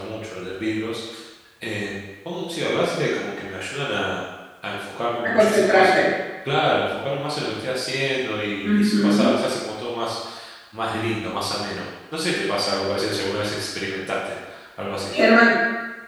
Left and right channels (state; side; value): identical; both; correlation 1.00